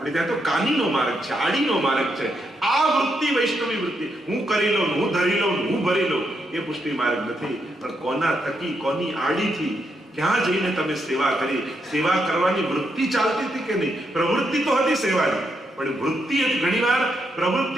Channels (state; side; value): normal; both; correlation 0.80